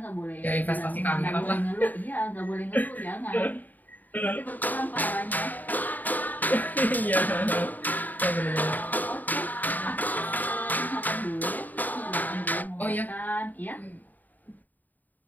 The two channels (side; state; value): right; late; 0.084 ms